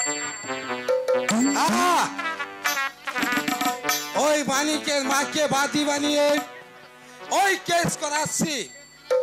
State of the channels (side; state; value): both; identical; correlation 1.00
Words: আহা! ওই মানিকের মাকে বাদী বানিয়ে ওই কেস করাচ্ছি।